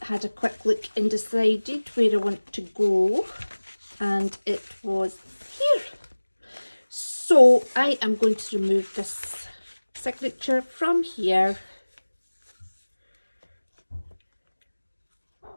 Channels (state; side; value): inverted; both; correlation -1.00